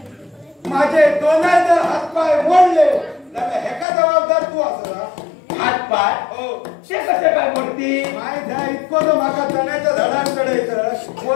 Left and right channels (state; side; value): drops out; right; at 3.9 s